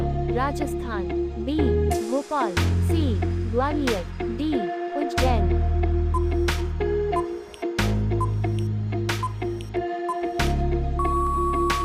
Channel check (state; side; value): identical; both; correlation 1.00